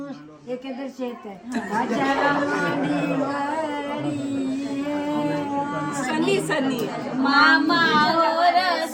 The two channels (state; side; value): identical; both; correlation 1.00